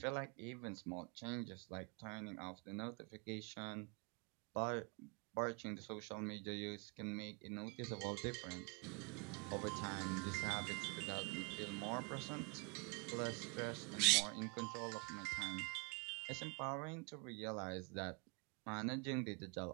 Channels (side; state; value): left; quieter; 31.2 dB